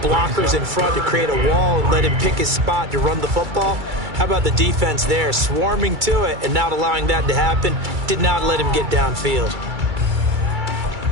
blockers in front to create a wall and let him pick his spot to run the football. How about the defense there, swarming to it and not allowing that to happen? Did not let him get downfield.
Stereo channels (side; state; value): left; late; 2.3 ms